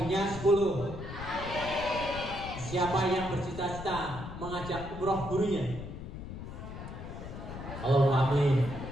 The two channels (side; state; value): left; noise; rumble, 9 dB below the sound